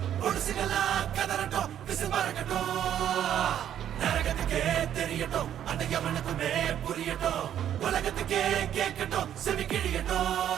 பொடுசுகளா கதறட்டும் விசுமறக்கட்டும் நரகத்துக்கே தெரியட்டும் அந்த எவனுக்குமே புரியட்டும் உலகத்துக்கே கேட்கட்டும் செவி கிழியட்டும்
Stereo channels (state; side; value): quieter; left; 10.3 dB